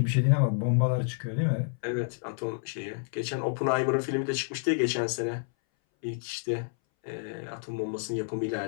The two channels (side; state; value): right; silent; 58 dB below the other